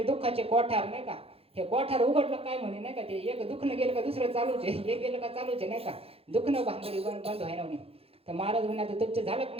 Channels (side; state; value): left; late; 0.28 ms